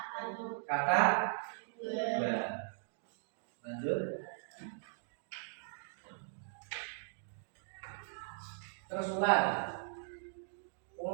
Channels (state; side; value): silent; left; digital silence